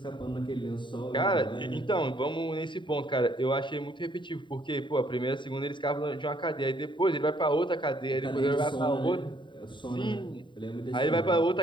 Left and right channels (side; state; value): right; late; 0.23 ms